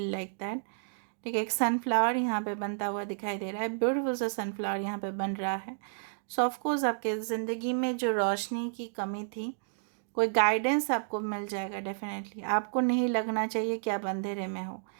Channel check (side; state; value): left; silent; digital silence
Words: like that, ठीक है। एक सनफ्लावर यहाँ पे बनता हुआ दिखाई दे रहा है, ब्यूटीफुल सा सनफ्लावर यहाँ पे बन रहा है। सो ऑफकोर्स आपके ज़िंदगी में जो रोशनी की कमी थी, कोई गाइडेंस आपको मिल जाएगा डेफिनेटली। आपको नहीं लगना चाहिए कि आप अंधेरे में हो।